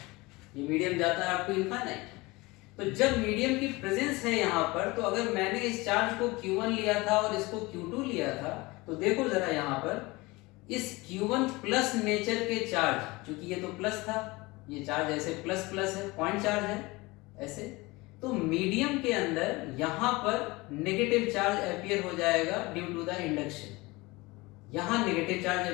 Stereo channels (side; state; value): right; quieter; 22.8 dB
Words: ये मीडियम जाता है अप टू इनफाइनाइट। तो जब मीडियम की प्रेजेंस है यहाँ पर, तो अगर मैंने इस चार्ज को Q1 लिया था और इसको Q2 लिया था, तो देखो जरा यहाँ पर इस Q1 प्लस नेचर के चार्ज, क्योंकि ये तो प्लस था, ये चार्ज ऐसे प्लस प्लस है, पॉइंट चार्ज है ऐसे, तो मीडियम के अंदर यहां पर नेगेटिव चार्ज अपीयर हो जाएगा ड्यू टू द इंडक्शन, यहां नेगेटिव चार्ज